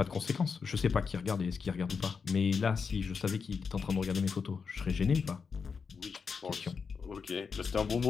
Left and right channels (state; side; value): quieter; right; 5.6 dB